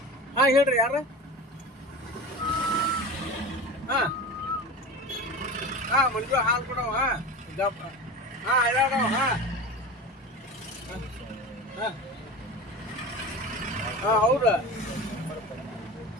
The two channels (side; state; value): both; normal; correlation 0.31